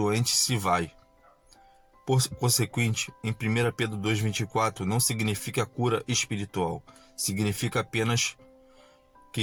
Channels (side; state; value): both; identical; correlation 1.00